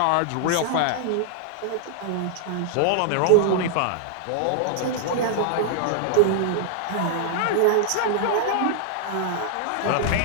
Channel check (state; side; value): different; both; correlation 0.00